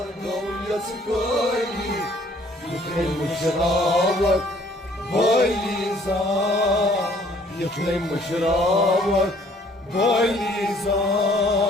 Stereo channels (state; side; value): normal; both; correlation 0.59